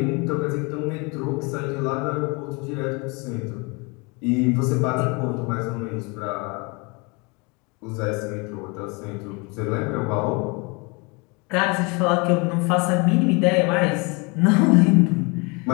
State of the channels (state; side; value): quieter; right; 29.3 dB